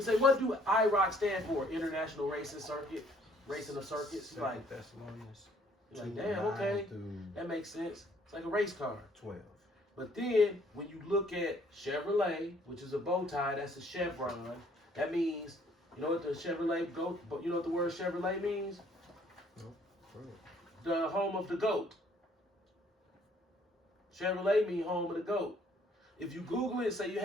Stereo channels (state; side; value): normal; both; correlation 0.62